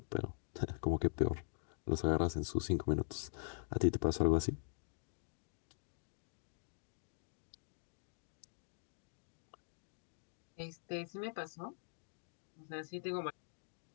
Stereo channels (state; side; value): silent; right; digital silence